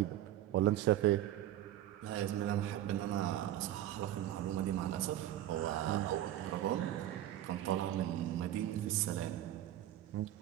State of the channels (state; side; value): quieter; left; 12.9 dB